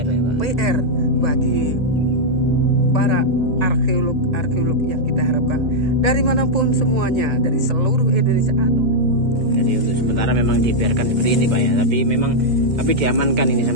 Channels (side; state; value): left; late; 2.1 ms